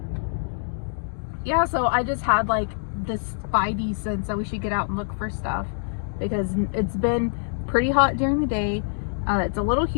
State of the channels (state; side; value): silent; right; digital silence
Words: Yeah, so I just had like this spidey sense that we should get out and look for stuff because it's been pretty hot during the day. It's a little